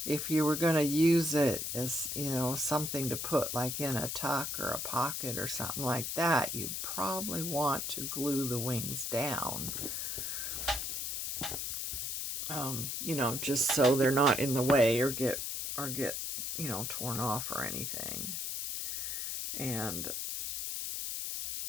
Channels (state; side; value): noise; left; hiss, 3 dB below the sound